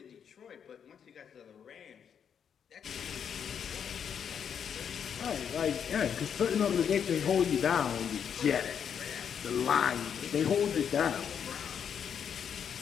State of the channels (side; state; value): right; quieter; 7.8 dB